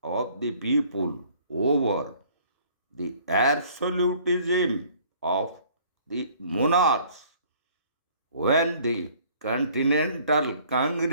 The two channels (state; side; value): inverted; both; correlation -0.56